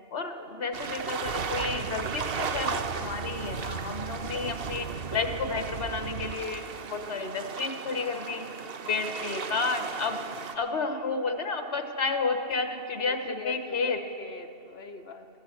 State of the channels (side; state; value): right; late; 2.7 ms